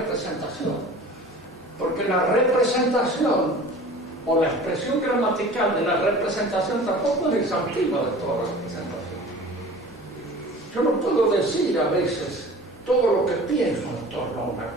Porque la representación o la expresión gramatical de la representación tampoco es exhaustiva de toda representación. Yo no puedo decir a veces todo lo que pienso en torno a una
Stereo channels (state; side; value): normal; both; correlation 0.42